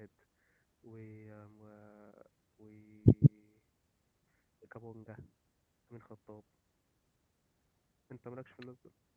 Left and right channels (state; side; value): identical; both; correlation 1.00